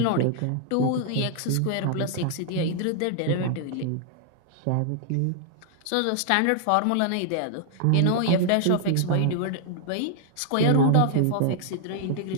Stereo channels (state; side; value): different; both; correlation 0.00